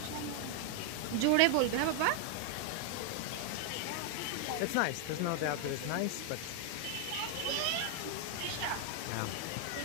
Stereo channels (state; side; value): different; both; correlation 0.00